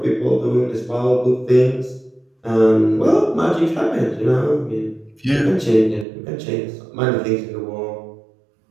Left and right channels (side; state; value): left; drops out; at 6.1 s